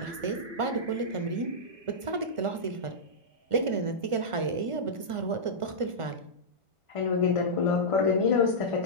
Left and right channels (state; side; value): late; left; 1.5 ms